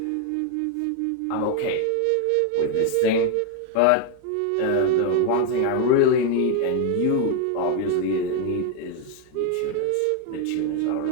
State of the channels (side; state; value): both; different; correlation 0.01